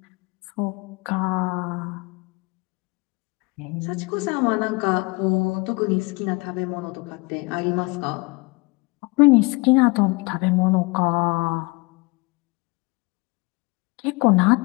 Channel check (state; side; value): quieter; right; 26.5 dB